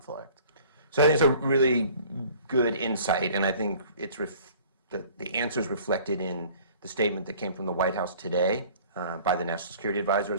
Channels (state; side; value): inverted; both; correlation -0.50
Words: So I think it's a really good insight, and I think it's the answer is reflected in the statement that came from the White House today by the National Security Advisor,